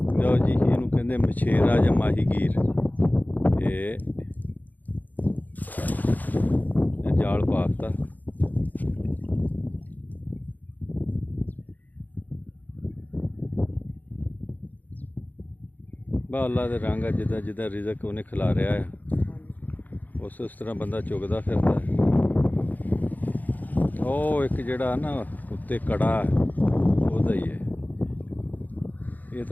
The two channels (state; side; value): late; right; 0.082 ms